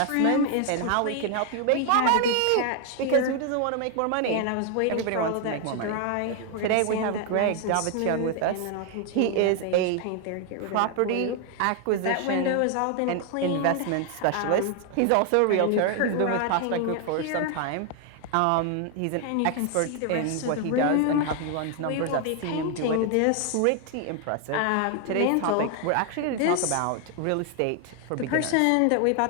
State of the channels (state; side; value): different; both; correlation 0.00